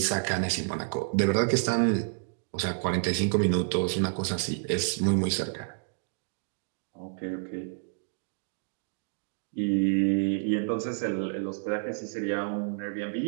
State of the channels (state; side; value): silent; left; digital silence